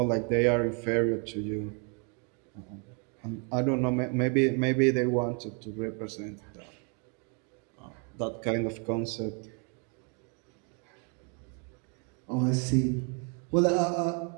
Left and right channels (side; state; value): left; quieter; 37.7 dB